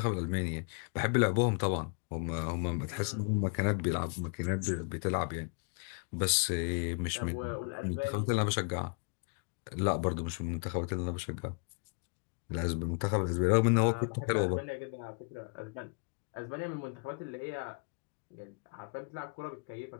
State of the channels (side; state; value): right; quieter; 39.0 dB